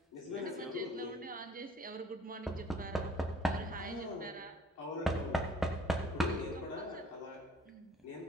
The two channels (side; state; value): both; normal; correlation 0.54